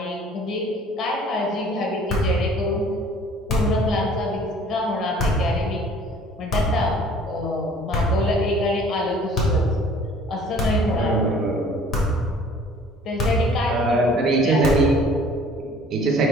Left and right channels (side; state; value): both; normal; correlation 0.52